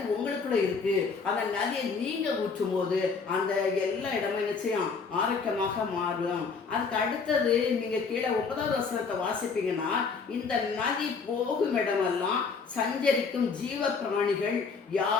உங்களுக்குள்ள இருக்கு. அந்த நதியை நீங்க ஊற்றும் போது அந்த எல்லா இடமும் நிச்சயம் ஆரோக்கியமாக மாறும். அதுக்கு அடுத்தது நீங்க கீழே 9வது வசனத்தை வாசிப்பீங்கன்னா, இந்த நதி போகும் இடமெல்லாம் சஞ்சரிக்கும் ஜீவ பிராணிகள்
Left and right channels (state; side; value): quieter; right; 5.1 dB